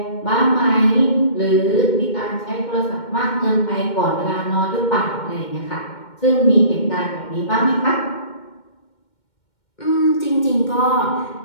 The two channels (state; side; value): late; right; 2.2 ms